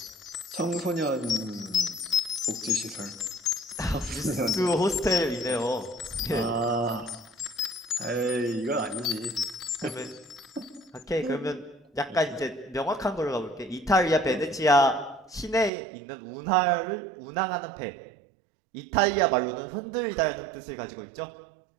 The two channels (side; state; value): left; drops out; at 15.7 s